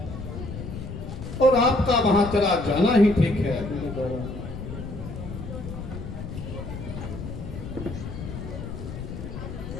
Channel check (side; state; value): left; noise; rumble, 8 dB below the sound